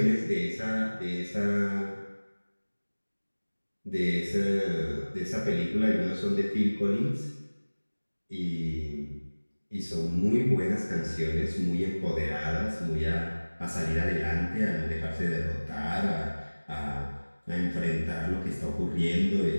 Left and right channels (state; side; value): inverted; both; correlation -1.00